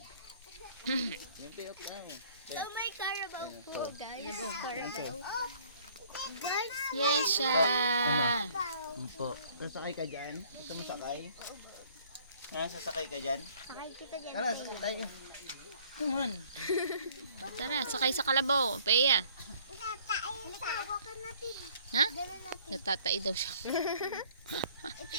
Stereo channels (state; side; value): inverted; both; correlation -0.57